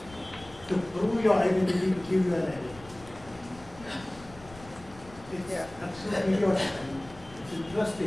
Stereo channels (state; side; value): noise; left; rumble, 20 dB below the sound